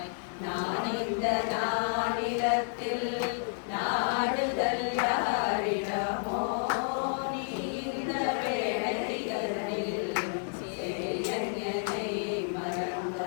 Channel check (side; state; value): right; silent; digital silence